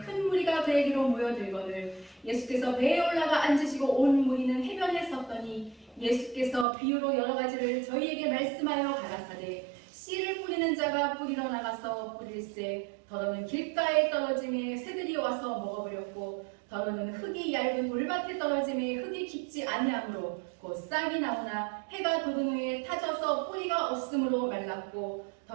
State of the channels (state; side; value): drops out; left; at 6.7 s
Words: 무리가 그에게로 모여들거늘 예수께서 배에 올라가 앉으시고 온 무리는 해변에 섰더니 예수께서 비유로 여러 가지를 저희에게 말씀하여 가라사대 씨를 뿌리는 자가 뿌리러 나가서 뿌릴새 더러는 길가에 떨어짐에 새들이 와서 먹어버렸고 더러는 흙이 얇은 물밭에 떨어짐에 흙이 깊지 아니하므로 곧 싹이 나오나 해가 돋은 후에 타져서 뿌리가 없으므로 말랐고